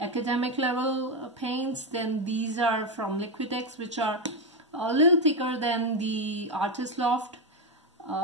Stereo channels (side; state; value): both; normal; correlation 0.08